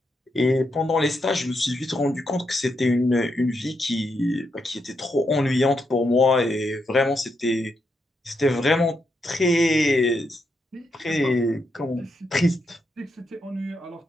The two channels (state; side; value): normal; both; correlation 0.82